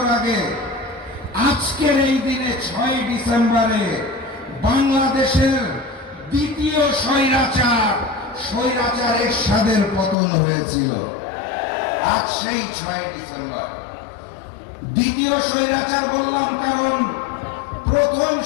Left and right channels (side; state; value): right; drops out; at 10.2 s